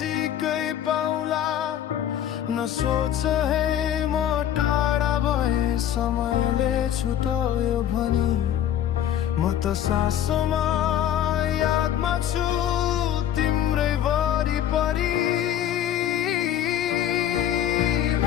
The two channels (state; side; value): quieter; right; 10.7 dB